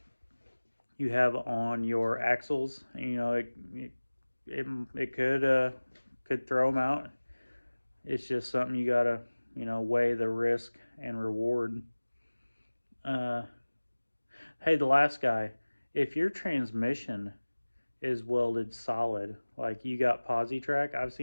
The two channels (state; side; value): inverted; both; correlation -1.00